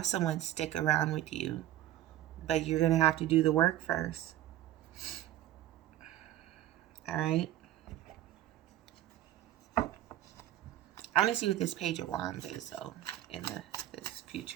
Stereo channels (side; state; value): left; quieter; 13.5 dB